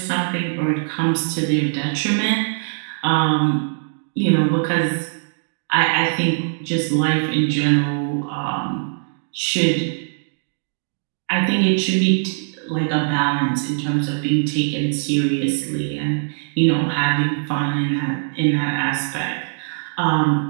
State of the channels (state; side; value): silent; left; digital silence